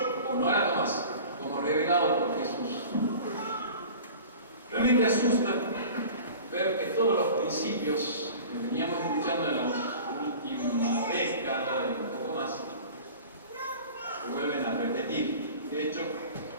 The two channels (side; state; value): both; inverted; correlation -0.40